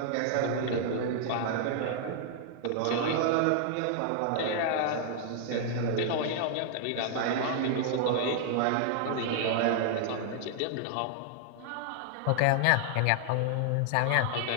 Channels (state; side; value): different; both; correlation -0.01